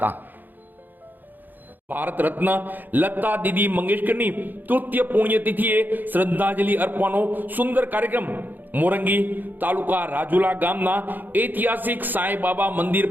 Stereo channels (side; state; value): left; late; 0.087 ms